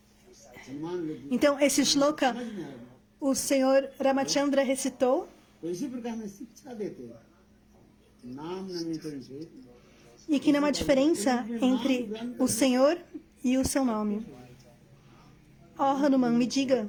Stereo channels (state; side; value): identical; both; correlation 1.00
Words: सम्मान लगी Então, esse shloka, समझ में आया o Senhor Ramachandra recitou, तो इसी प्रकार में शिक्षा देते हैं नाम नमीकरण से e que não há diferença entre o Senhor e o seu nome. Ó Hanuman, me